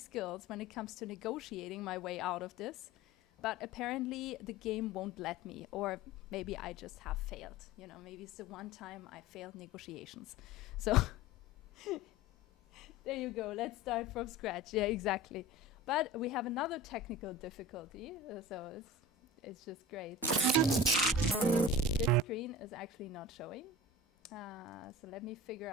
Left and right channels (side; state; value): both; normal; correlation 0.35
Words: when it comes to negotiating my way out of this. But apparently the game won't let me, or maybe I just have failed. You know, maybe it's the one time I failed negotiations. So there you go. Let's start from scratch. Yeah, exactly. But we have another technical difficulty, so it's just great. This screen is actually not showing. So let me figure